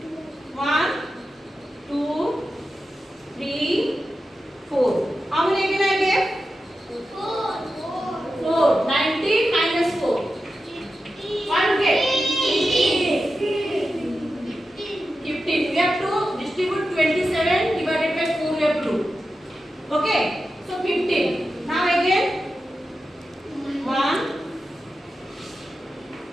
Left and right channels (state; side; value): normal; both; correlation 0.91